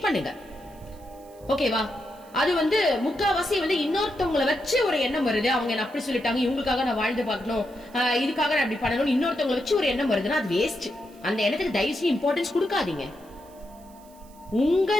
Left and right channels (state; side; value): noise; right; hiss, 27 dB below the sound